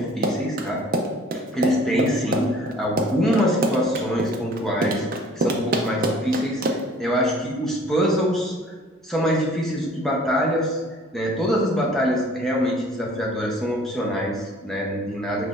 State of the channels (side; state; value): both; normal; correlation 0.51